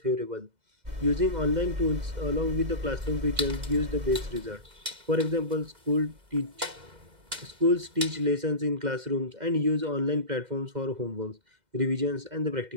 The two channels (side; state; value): left; late; 2.0 ms